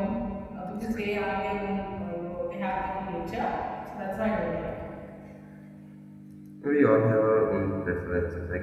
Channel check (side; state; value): both; identical; correlation 1.00